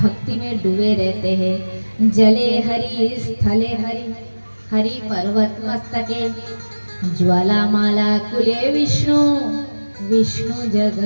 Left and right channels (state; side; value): inverted; both; correlation -1.00